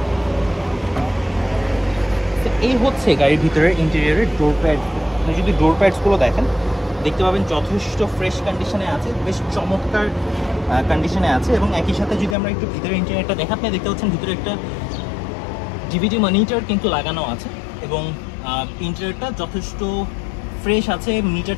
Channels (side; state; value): right; drops out; at 12.4 s